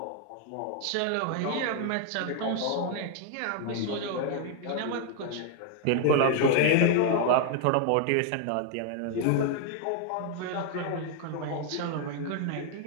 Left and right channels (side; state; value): both; different; correlation 0.00